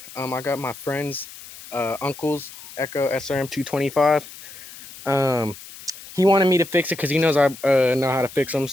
I got my friend's uncle's Echo SRM 225. He wanted me to fix it because he knows I know how to fix them.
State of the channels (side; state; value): left; noise; hiss, 16 dB below the sound